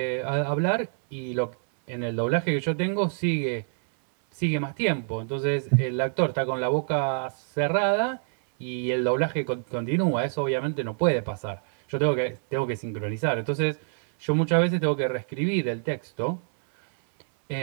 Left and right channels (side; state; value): left; silent; 61 dB below the other